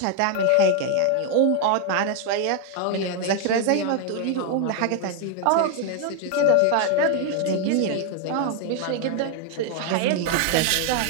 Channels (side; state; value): both; different; correlation 0.01